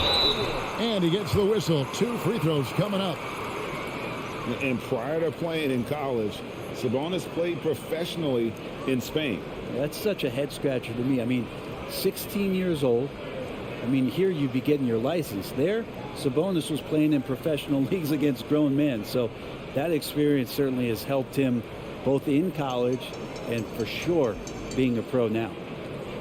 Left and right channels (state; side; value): identical; both; correlation 1.00